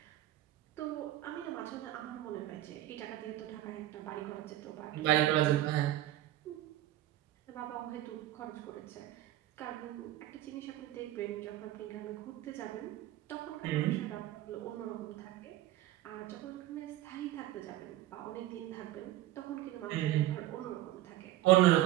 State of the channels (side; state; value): left; quieter; 14.6 dB